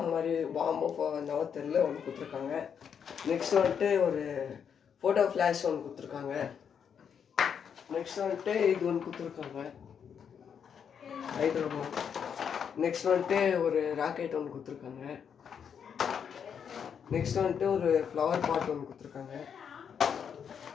மாதிரி பாம்பு நவ தெரியல ஒன்று கொடுத்துருக்காங்க. நெக்ஸ்ட் வந்துட்டு ஒரு ஃபோட்டோ ஃப்ளாஷ் ஒன்று கொடுத்துருக்காங்க. நெக்ஸ்ட் வந்துட்டு இது ஒன்று கொடுத்துருக்காங்க ஹைட்ரோபோன். நெக்ஸ்ட் வந்துட்டு ஒரு ராக்கெட் ஒன்று கொடுத்துருக்காங்க. நெக்ஸ்ட் வந்துட்டு ஒரு ஃப்ளவர் பாட் ஒன்று கொடுத்துருக்காங்க.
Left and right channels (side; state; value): right; quieter; 7.5 dB